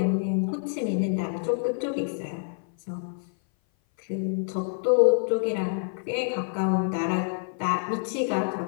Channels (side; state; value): right; silent; 57 dB below the other